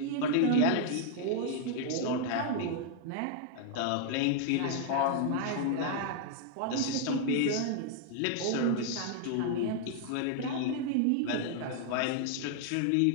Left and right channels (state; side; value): different; both; correlation 0.00